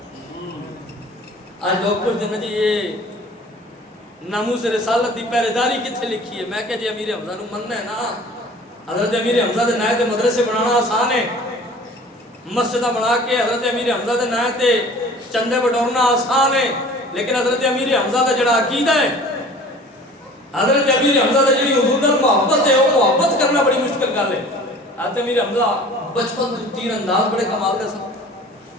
آج لوگ پوچھتے ہیں جی یہ ناموس رسالت کی پہرے داری کتنے لکھی ہے؟ میں کہ جی امیر حمزہ نو مننا ہے نا، حضرت امیر حمزہ دے نائے تے مدرسے بنانا آسان ہے، مسجدہ بنا کے حضرت امیر حمزہ دے نائے تے چندے بٹورنا آسان ہے، لیکن حضرت امیر حمزہ دا جڑا عقیدہ ہے، حضرت امیر حمزہ دا جڑی حضور نال محبت ہے، وہ محبت کرنا بڑی مشکل گل ہے۔ حضرت امیر حمزہ بچپن تو تیر انداز بڑے کمال دے سن،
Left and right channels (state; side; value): normal; both; correlation 0.46